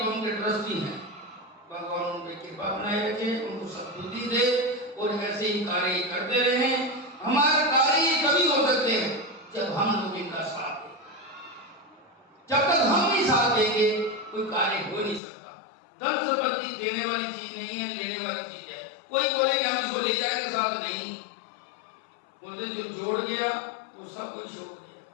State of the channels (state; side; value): drops out; right; at 15.2 s